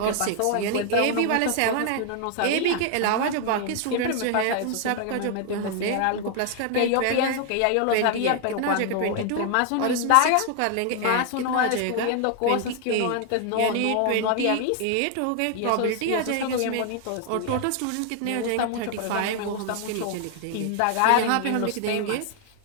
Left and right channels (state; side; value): different; both; correlation 0.00